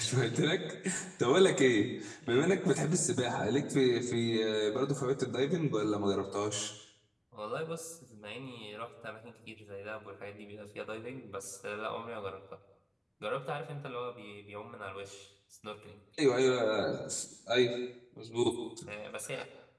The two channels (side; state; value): both; identical; correlation 1.00